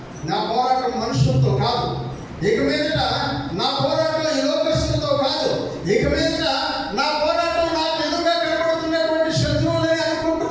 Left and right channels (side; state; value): both; identical; correlation 1.00